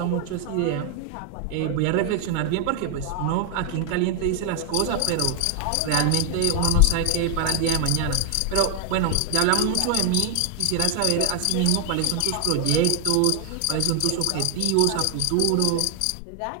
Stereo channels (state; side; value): different; both; correlation 0.00